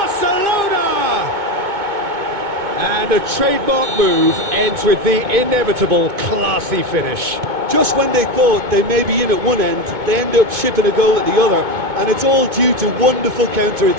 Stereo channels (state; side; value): late; left; 2.2 ms